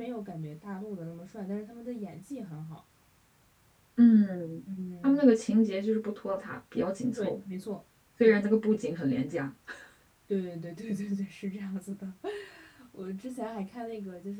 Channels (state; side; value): identical; both; correlation 1.00